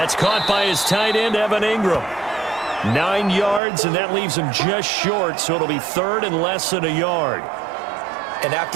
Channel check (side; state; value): left; drops out; at 3.6 s